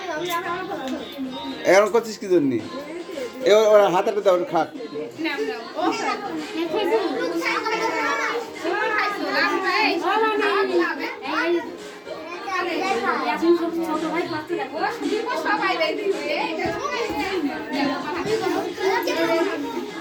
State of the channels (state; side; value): identical; both; correlation 1.00